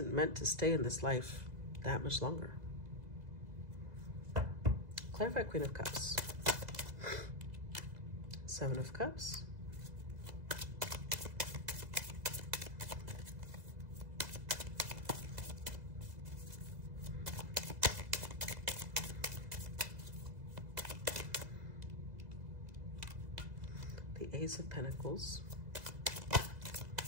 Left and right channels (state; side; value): late; left; 2.0 ms